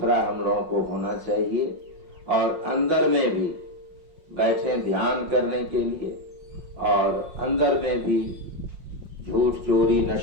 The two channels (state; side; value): late; left; 5.5 ms